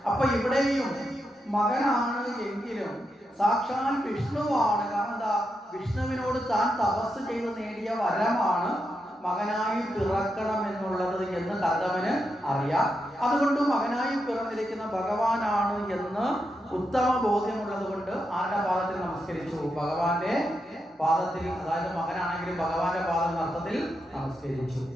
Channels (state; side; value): normal; both; correlation 0.85